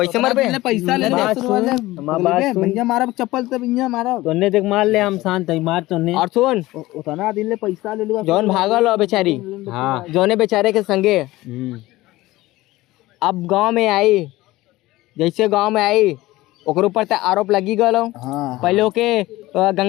ऐसे मरबे पैसा ले भैया मारा चप्पल तब भैया मारा तोने देख मार ले हम शांत है मार तोने और सुन उतना दिन ले पैसा ले लूं जौन भागल हो बेचारी हां जौने बेचारे के संगे अब गांव में आई जैसे गांव में आई ओकर ऊपर ते आरोप लगी गलो पहले ओके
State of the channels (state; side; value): quieter; right; 18.3 dB